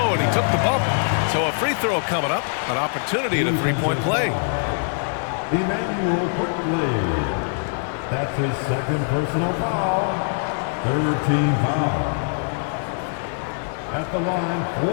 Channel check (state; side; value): silent; right; digital silence